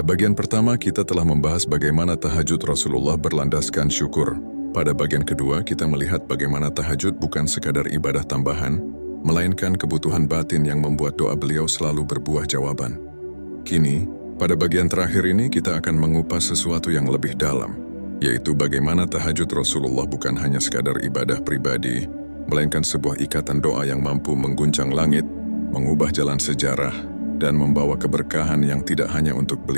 pertama, kita telah membahas bagaimana tahajud Rasulullah berlandaskan syukur. Pada bagian kedua, kita melihat bagaimana tahajud bukan sekadar ibadah tambahan, melainkan kebutuhan batin yang membuat doa beliau selalu berbuah jawaban. Kini, pada bagian terakhir ini kita akan mengupas sesuatu yang lebih dalam, yaitu bagaimana tahajud Rasulullah bukan hanya sekadar ibadah pribadi, melainkan sebuah ikatan doa yang mampu mengguncang langit, mengubah jalan sejarah, dan membawa keberkahan yang tidak hanya untuk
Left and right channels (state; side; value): inverted; both; correlation -1.00